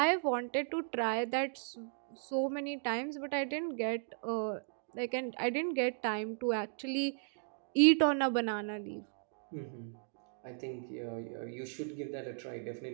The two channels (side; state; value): left; silent; digital silence